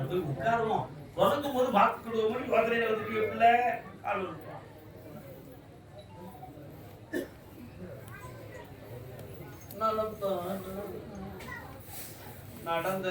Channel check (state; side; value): identical; both; correlation 1.00